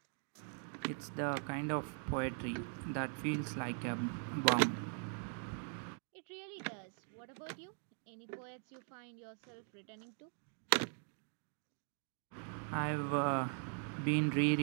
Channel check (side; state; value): left; silent; 50 dB below the other